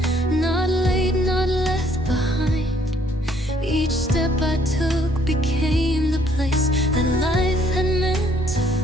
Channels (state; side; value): normal; both; correlation 0.64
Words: not late, not left behind. Each step I took became the place that life had meant to